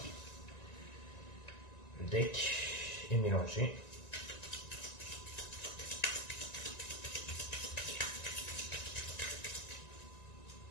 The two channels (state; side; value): late; right; 1.9 ms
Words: le deck et mélanger.